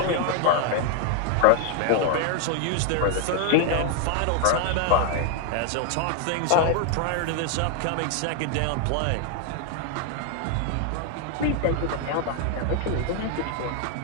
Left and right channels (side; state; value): both; different; correlation 0.00